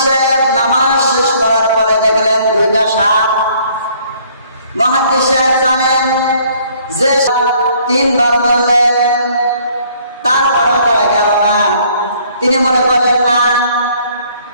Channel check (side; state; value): both; inverted; correlation -0.61